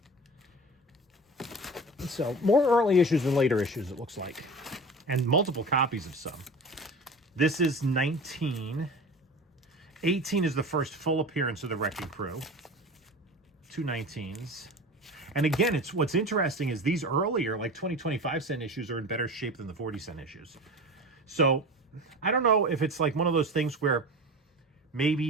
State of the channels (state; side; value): normal; both; correlation 0.34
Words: So more early issues than later issues, it looks like. And multiple copies of some. This is 19. 18 is the first full appearance of the Wrecking Crew. 2 19s. And again, it's what's interesting is these earlier, like 20, 25-cent issues are in better shape than the 40-cent issues. So I don't know if it's like one of those things where